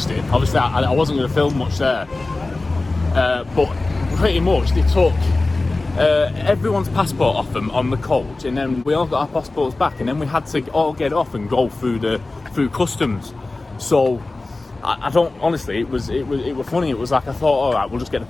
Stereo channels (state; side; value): quieter; right; 3.2 dB